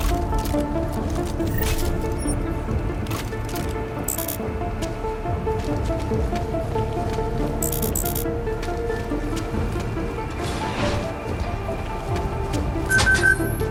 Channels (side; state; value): both; identical; correlation 1.00